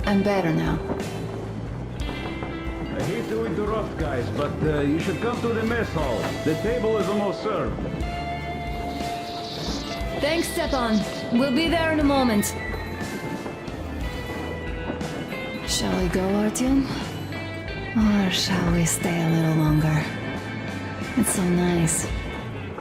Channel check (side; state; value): both; identical; correlation 1.00